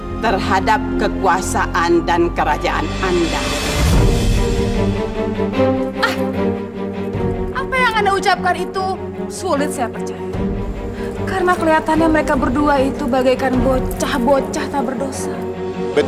terhadap kekuasaan dan kerajaan Anda. Apa yang Anda ucapkan itu sulit saya percaya. Karena kelihatannya mereka berdua itu bagaikan bocah-bocah tak berdosa.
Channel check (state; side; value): identical; both; correlation 1.00